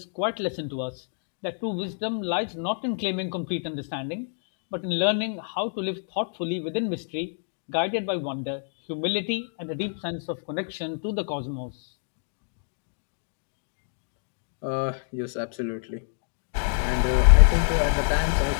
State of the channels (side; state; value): right; silent; digital silence